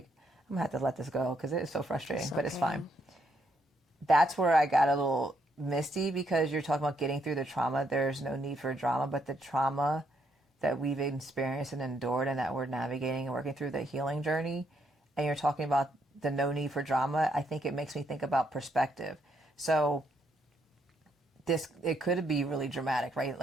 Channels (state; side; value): normal; both; correlation 0.75